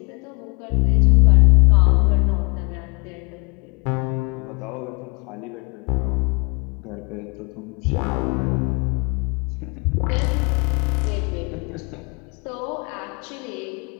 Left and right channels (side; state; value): right; quieter; 31.0 dB